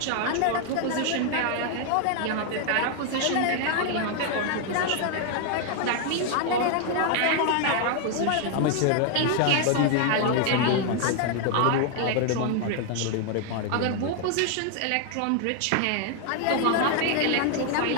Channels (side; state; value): both; different; correlation 0.00